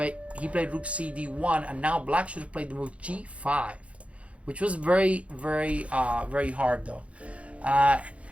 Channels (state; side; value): late; left; 0.063 ms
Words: he played rook c d1, and now black should have played the move g5, which was very hard though. I